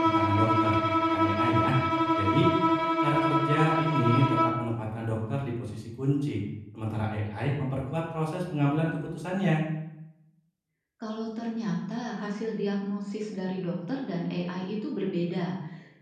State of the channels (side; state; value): both; identical; correlation 1.00